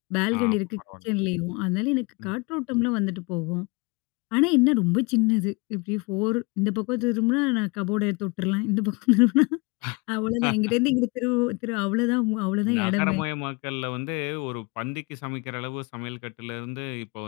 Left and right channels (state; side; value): quieter; right; 28.2 dB